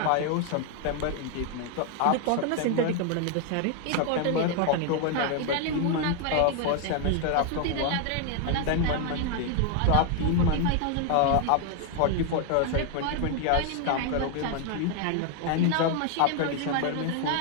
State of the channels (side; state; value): both; different; correlation 0.00